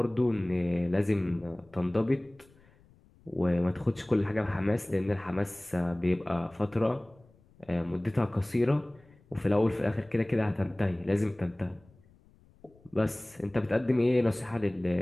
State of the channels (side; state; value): left; noise; rumble, 29 dB below the sound